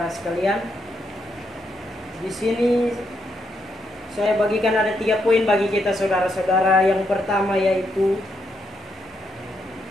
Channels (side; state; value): both; normal; correlation 0.79